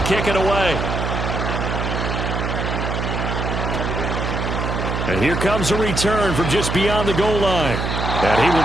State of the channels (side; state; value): right; noise; hum, 2 dB below the sound